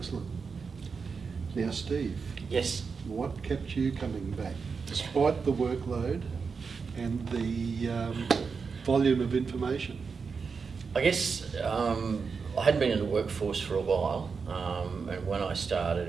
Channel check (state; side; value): quieter; left; 5.3 dB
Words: Now, Steve. Yes. What kept you coming back, despite the workload and the volume of information? I guess I hadn't been in the workforce for a while, and when I started